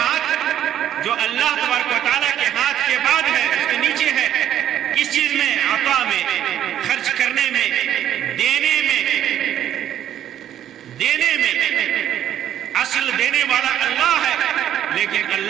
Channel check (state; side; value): quieter; left; 10.9 dB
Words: جو اللہ تبارک و تعالیٰ کے ہاتھ کے بعد ہے، اس کے نیچے ہے، کس چیز میں؟ عطا میں، خرچ کرنے میں، دینے میں۔ اصل دینے والا اللہ ہے، لیکن